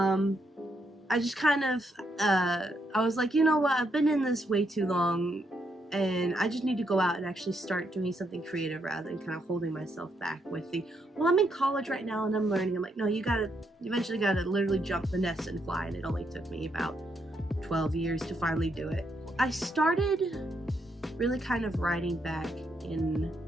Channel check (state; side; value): normal; both; correlation 0.78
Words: just kind of, I was like, you know what, I've been in this way too long, and I just need to go out and actually start doing something creative rather than kind of holding myself back with the, well, I'm in college right now and I'm learning. I'm like, no, you eventually gotta literally jump the nest and fly, and it only took me about 12 years to finally do it. I started really kind of writing back in